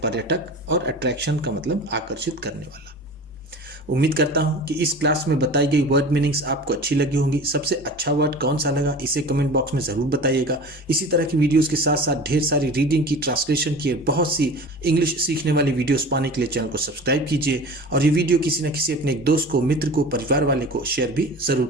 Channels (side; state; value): both; normal; correlation 0.37